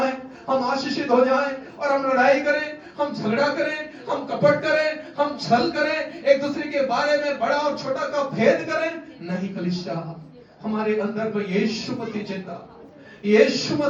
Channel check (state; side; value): identical; both; correlation 1.00